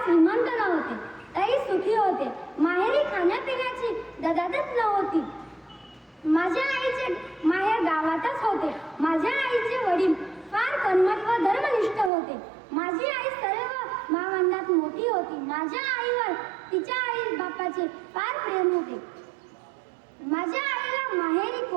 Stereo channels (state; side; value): drops out; left; at 12.1 s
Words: श्रीमंत नव्हते, तरी सुखी होते. माहेरी खाण्यापिण्याची ददादत नव्हती. माझ्या आईचे माहेर गावातच होते. माझ्या आईचे वडील फार कर्मठ व धर्मनिष्ठ होते. माझी आई सर्व भावंडात मोठी होती. माझ्या आईवर तिच्या आई बापाचे फार प्रेम होते. माझ्या आईला माहेरी